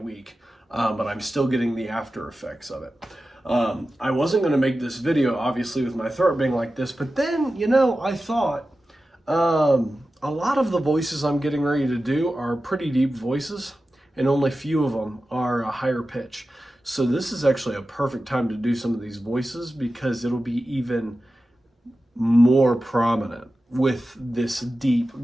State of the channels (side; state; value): both; normal; correlation 0.94